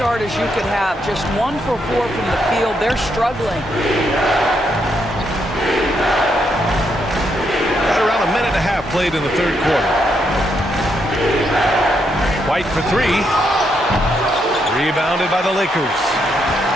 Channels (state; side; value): normal; both; correlation 0.78